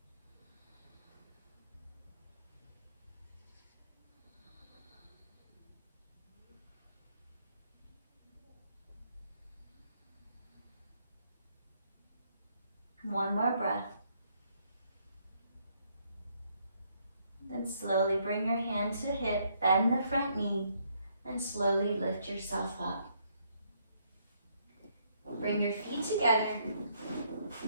One more breath. Then slowly bring your hand to hip, bend the front knee, and slowly lift yourself up. Bring your feet together,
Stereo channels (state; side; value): inverted; both; correlation -0.71